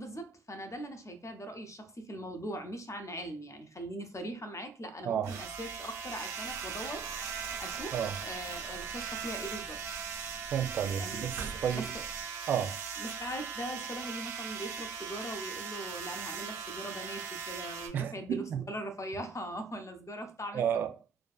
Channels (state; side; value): quieter; left; 4.9 dB